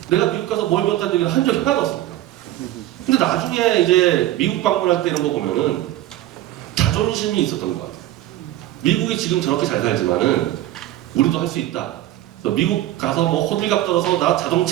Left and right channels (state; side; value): quieter; left; 14.3 dB